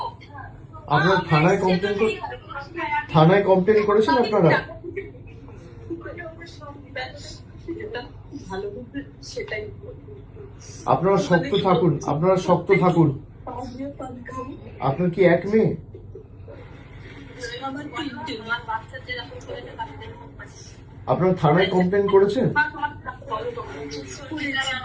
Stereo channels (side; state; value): both; identical; correlation 1.00